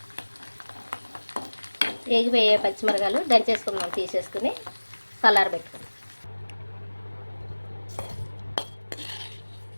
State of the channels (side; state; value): both; inverted; correlation -1.00